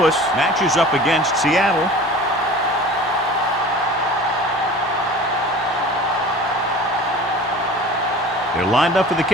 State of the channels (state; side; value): normal; both; correlation 0.41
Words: matches up against Seattle. They're lined up for the